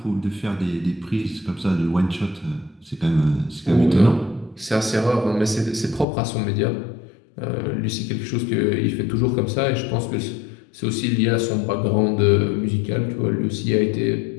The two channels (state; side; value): drops out; right; at 6.1 s